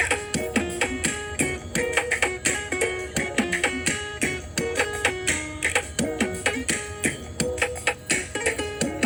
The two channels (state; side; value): identical; both; correlation 1.00